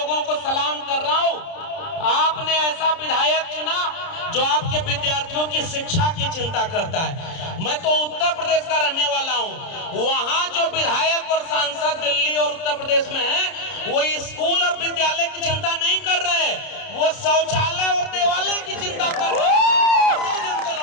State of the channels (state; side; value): late; right; 30 ms